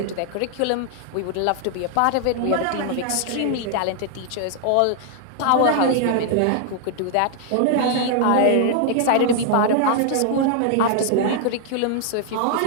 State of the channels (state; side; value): different; both; correlation 0.00